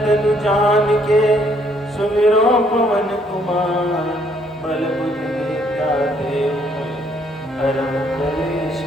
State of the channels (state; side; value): normal; both; correlation 0.67